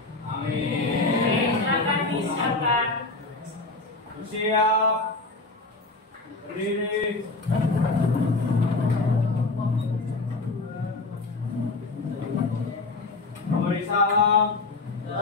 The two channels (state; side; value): quieter; right; 3.4 dB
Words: Oke, silakan disiapkan. Siap. Berdiri. Memberi salam.